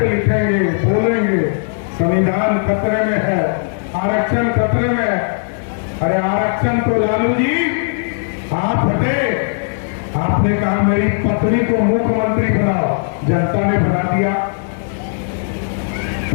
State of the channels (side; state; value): right; silent; 64 dB below the other